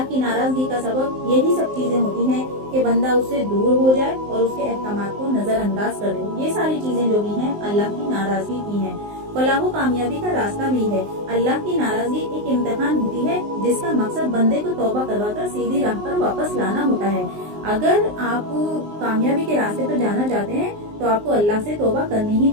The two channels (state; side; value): late; left; 19 ms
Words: کی ناراضگی کا سبب یہی سب چیزیں ہوتی ہیں کہ بندہ اس سے دور ہو جائے اور اس کے احکامات کو نظر انداز کر دے۔ یہ ساری چیزیں جو بھی ہیں اللہ کی ناراضگی کی ہیں۔ فلاح و کامیابی کا راستہ بھی ہے۔ اللہ کی ناراضگی ایک امتحان ہوتی ہے جس کا مقصد بندے کو توبہ کروا کر سیدھی راہ پر واپس لانا ہوتا ہے۔ اگر آپ کامیابی کے راستے پر جانا چاہتے ہیں تو آپ کو اللہ سے توبہ کرنی ہی